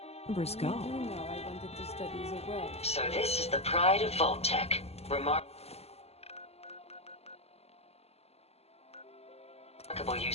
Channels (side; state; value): right; late; 0.30 ms